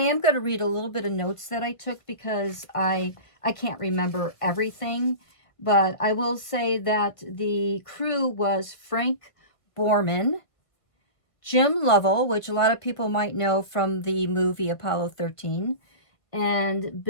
am going to read a little bit of notes that I took, because I can't remember everything. But I will say that the crew was Frank Borman, Jim Lovell, which a lot of people might know from the movie Apollo 13, and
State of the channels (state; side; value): late; right; 1.5 ms